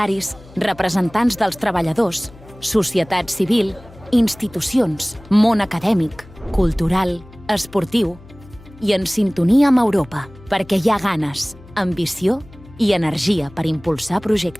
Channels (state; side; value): noise; left; hum, 22 dB below the sound